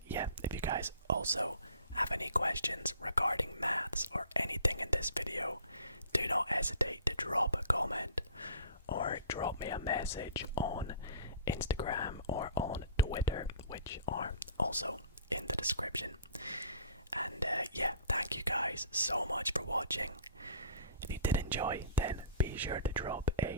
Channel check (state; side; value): inverted; both; correlation -0.46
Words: yeah, if you guys also have any questions regarding maths or anything in this video, do not hesitate to drop a comment or drop me a message on Instagram or on Twitter, which are also in the description. And yeah, thank you guys so much for watching. If you did enjoy, then be sure to drop